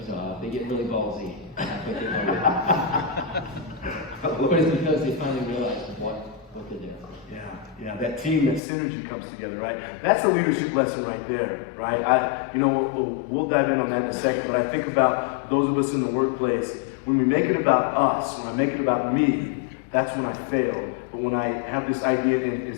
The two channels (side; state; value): right; drops out; at 8.6 s